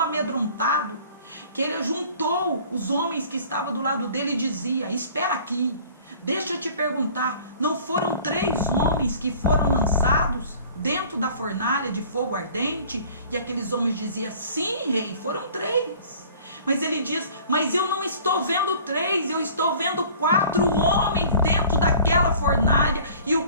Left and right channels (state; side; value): inverted; both; correlation -0.49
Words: que ele juntou os homens que estavam do lado dele e dizia, espera aqui, deixa eu te perguntar, não foram 3 homens que foram lançados dentro da fornalha de fogo ardente? E aqueles homens diziam, sim, rei, foram 3. Mas ele diz, mas eu não estou vendo 3, eu estou vendo 4 homens dentro daquela fornalha, e